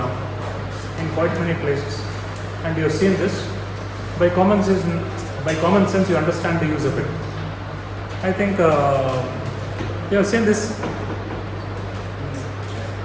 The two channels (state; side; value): identical; both; correlation 1.00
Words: quite many places, and you have seen this. By common sense, you understand the use of it. I think you have seen this.